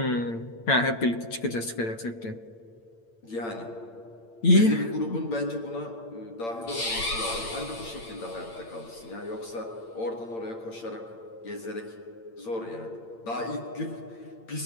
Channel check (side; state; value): right; late; 8.8 ms